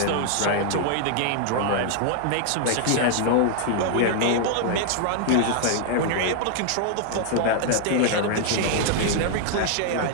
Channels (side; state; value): both; different; correlation 0.00